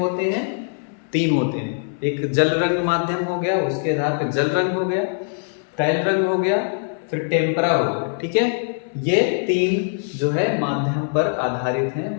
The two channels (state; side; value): silent; right; 63 dB below the other